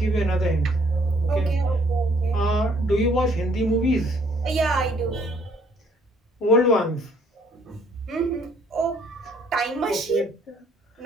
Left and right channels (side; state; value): both; normal; correlation 0.63